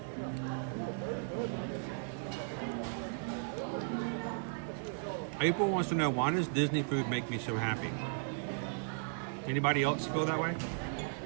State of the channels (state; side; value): silent; left; 54 dB below the other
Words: April wants to know, why does Disney food make me so happy? Anybody else feel that way?